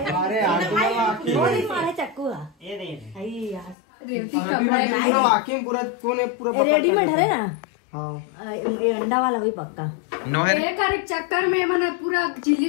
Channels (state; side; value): drops out; right; at 3.8 s